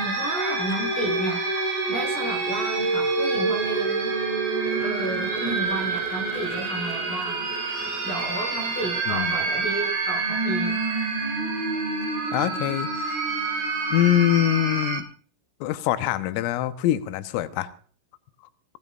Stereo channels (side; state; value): right; late; 16 ms